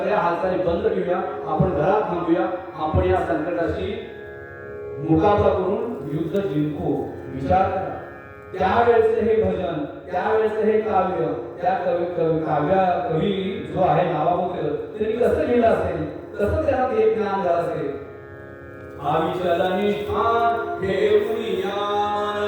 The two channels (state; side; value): identical; both; correlation 1.00